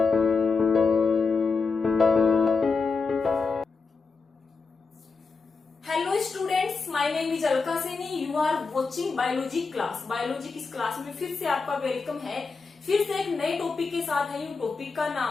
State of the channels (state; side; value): quieter; right; 4.6 dB